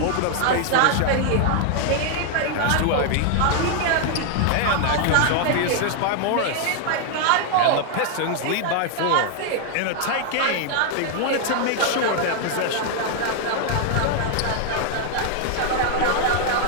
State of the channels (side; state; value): both; different; correlation 0.00